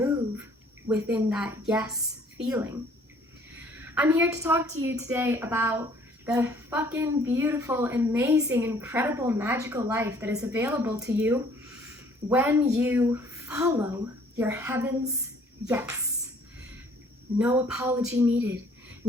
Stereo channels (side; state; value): both; normal; correlation 0.58